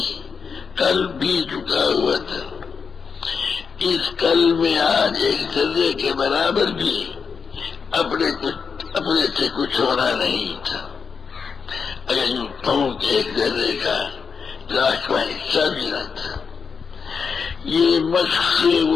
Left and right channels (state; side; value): quieter; right; 5.7 dB